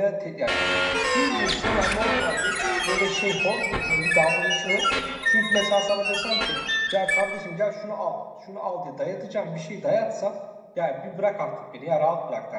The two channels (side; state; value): both; identical; correlation 1.00